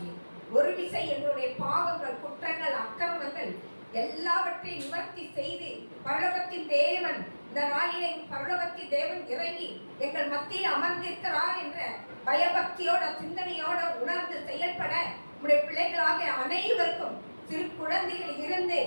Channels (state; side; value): inverted; both; correlation -1.00